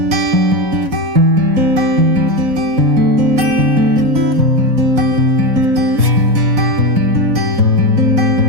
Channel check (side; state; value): left; late; 4.7 ms